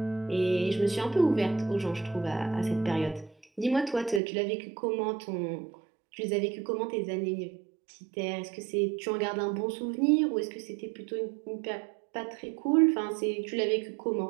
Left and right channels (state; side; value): drops out; left; at 4.2 s